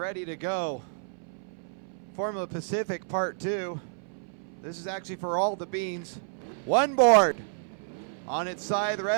to go. Formula Pacific Part 2. This is actually for all the beans. One board. On its side, the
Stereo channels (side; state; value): left; silent; 58 dB below the other